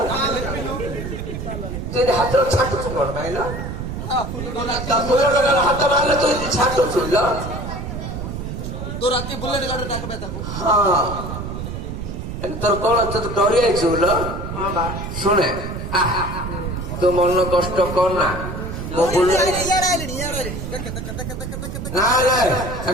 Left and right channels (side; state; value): right; noise; rumble, 6 dB below the sound